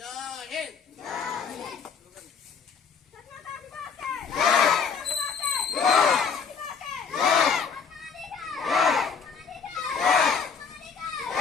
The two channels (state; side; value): quieter; right; 6.0 dB